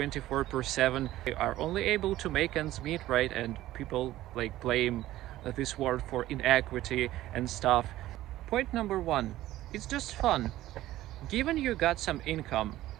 are only able to make ends meet, right? And people blame this world for inequity and stuff. Point number one, it's just fun. Given you got some income,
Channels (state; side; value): quieter; left; 15.1 dB